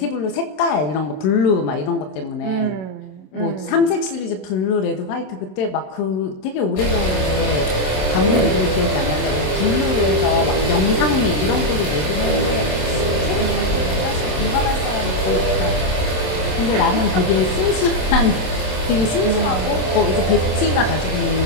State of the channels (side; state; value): right; late; 27 ms